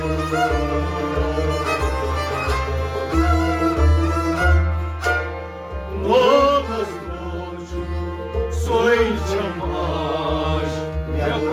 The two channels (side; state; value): both; identical; correlation 1.00